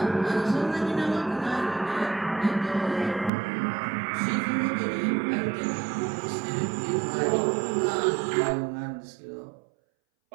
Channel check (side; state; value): left; drops out; at 3.3 s